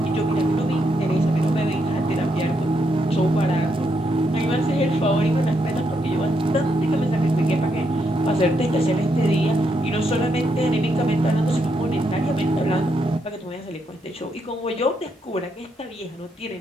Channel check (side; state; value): both; normal; correlation 0.79